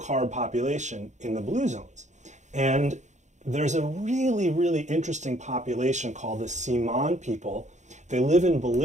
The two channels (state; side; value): late; left; 0.34 ms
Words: population in the blue zones. And there's a really, really interesting population called the Siman people. They live in